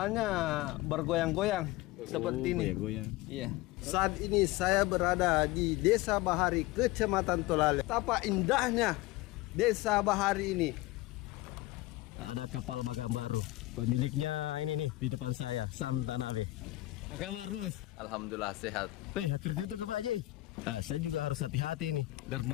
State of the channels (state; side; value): quieter; right; 18.7 dB